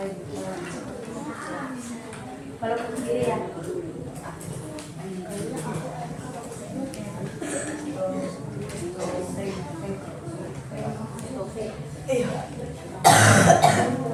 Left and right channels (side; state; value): both; identical; correlation 1.00